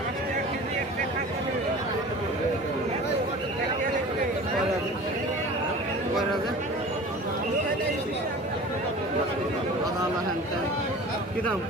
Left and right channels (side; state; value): both; normal; correlation 0.39